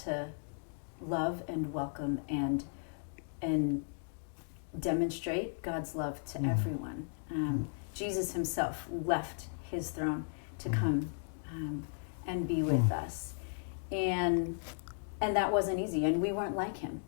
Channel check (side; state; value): right; silent; digital silence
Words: love and welcome and demonstrate God's love to everyone. Jesus himself left his throne to come and be with us, and that wasn't easy, and we weren't like him,